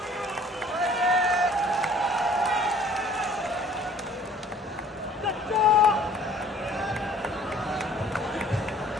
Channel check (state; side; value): normal; both; correlation 0.54